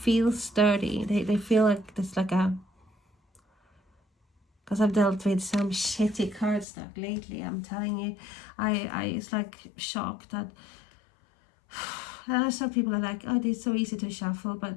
sturdy. They feel like there's like a, because I've dealt with some shitty cardstock lately, I'm telling you. I it's like shocked that I know some people are like, oh, it's so easy to shuffle,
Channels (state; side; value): drops out; right; at 6.7 s